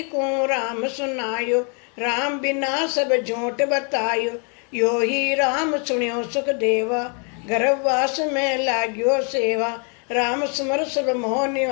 को राम सुनायो, राम बिना सब झूठ बतायो, यो ही राम सुनियो सुख देवा, गर्भवास में लाग्यो सेवा, राम सुमर सब मोह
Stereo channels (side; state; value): right; quieter; 38.8 dB